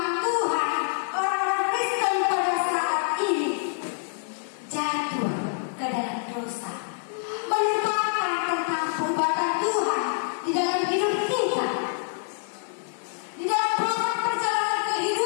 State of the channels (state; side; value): silent; right; digital silence